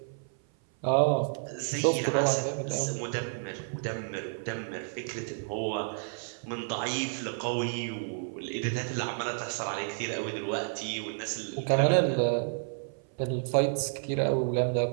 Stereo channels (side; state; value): left; silent; 56 dB below the other